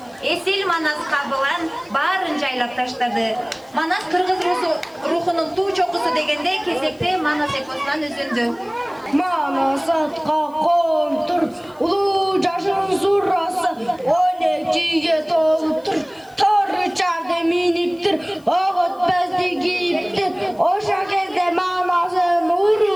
Esil Manas kabılan barın jaylap taşladı. Manas Kırgız ruhunun tuğ çokusu degende kesekte Manas eposundan üzündü. Manas atqa kontur, ulu jaşın surrası, 12'ye toluptur. Torru çarda miniptir, oğut bezdi giyiptir. Oşa kezde manasın,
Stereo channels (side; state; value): left; noise; hiss, 30 dB below the sound